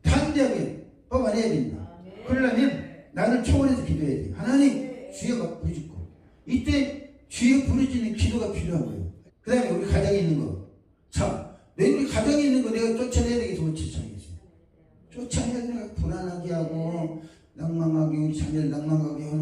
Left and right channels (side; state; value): both; identical; correlation 1.00